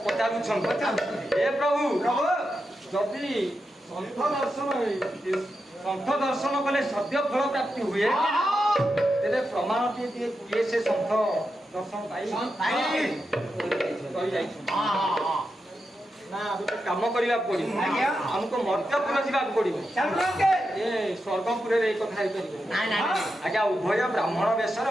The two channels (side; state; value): both; normal; correlation 0.88